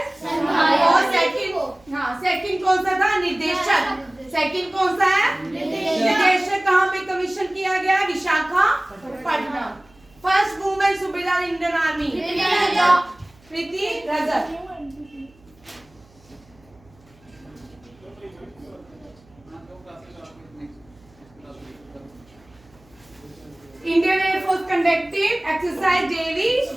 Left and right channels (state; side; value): noise; right; hum, 29 dB below the sound